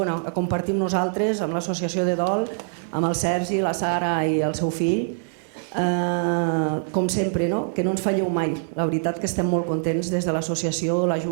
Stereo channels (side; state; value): left; silent; digital silence